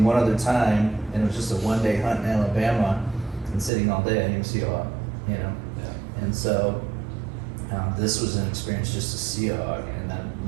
one other time, and it was just a one-day hunt in Alabama, and sitting all day, I didn't even see a hog, you know? Yeah. And so this was an experience just to see a hog, and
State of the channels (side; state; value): left; drops out; at 3.7 s